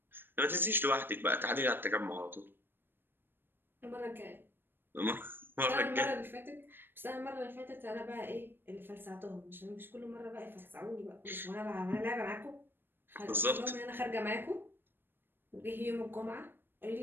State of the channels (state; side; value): late; left; 0.098 ms